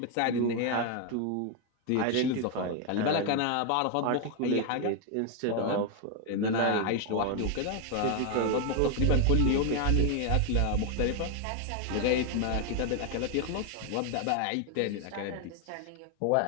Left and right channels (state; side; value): different; both; correlation 0.01